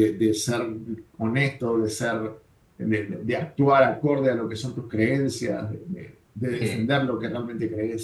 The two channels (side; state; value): both; identical; correlation 1.00